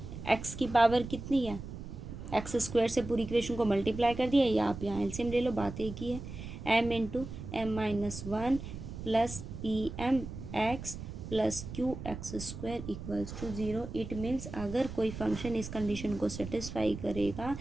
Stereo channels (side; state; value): right; noise; rumble, 10 dB below the sound